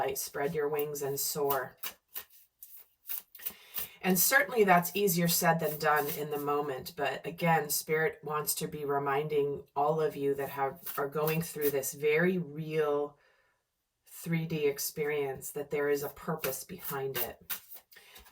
Spread your wings and soar. And certainly that's easier said than done in the moment. But again, Spirit wants to be reminding all of you that are going through this very real 3D experience that there is a purpose behind it.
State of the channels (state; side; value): identical; both; correlation 1.00